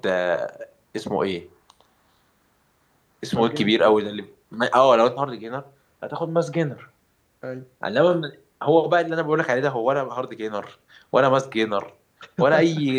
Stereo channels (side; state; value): both; identical; correlation 1.00